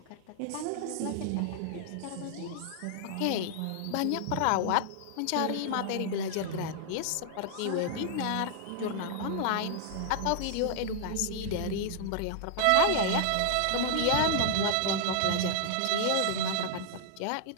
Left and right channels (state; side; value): different; both; correlation -0.01